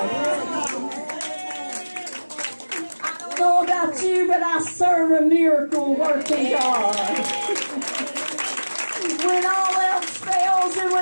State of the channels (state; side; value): inverted; both; correlation -1.00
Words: I don't know about you, but I serve a miracle working God. When all else fails and